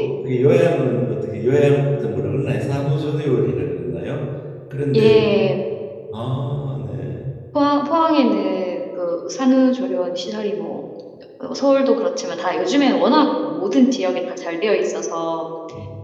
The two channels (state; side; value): identical; both; correlation 1.00